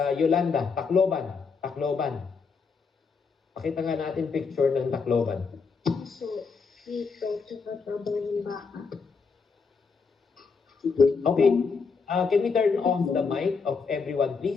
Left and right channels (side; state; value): right; quieter; 5.1 dB